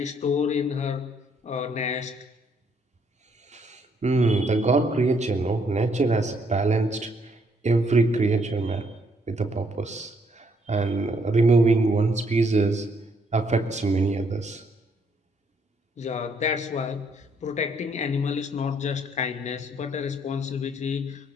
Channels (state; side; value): normal; both; correlation 0.70